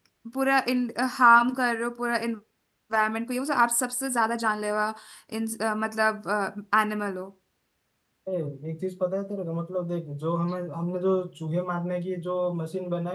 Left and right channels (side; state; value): both; identical; correlation 1.00